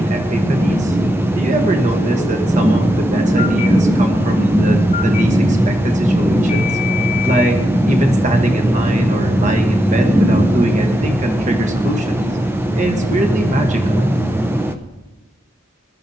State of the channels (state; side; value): normal; both; correlation 0.85